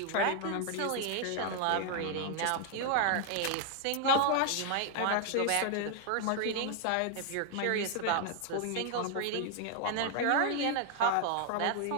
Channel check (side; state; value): both; different; correlation 0.00